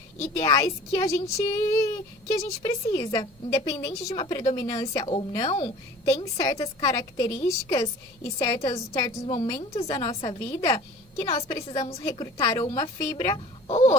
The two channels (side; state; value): both; normal; correlation 0.44